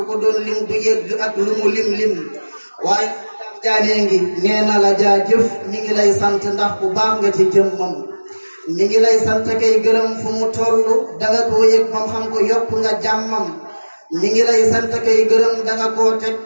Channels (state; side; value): inverted; both; correlation -1.00